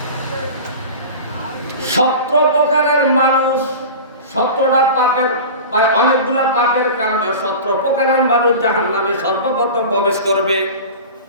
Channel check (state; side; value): inverted; both; correlation -0.33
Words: 17 প্রকারের মানুষ, 17টা পাপের, অনেকগুলা পাপের কারণে 17 প্রকারের মানুষ জাহান্নামে সর্বপ্রথম প্রবেশ করবে।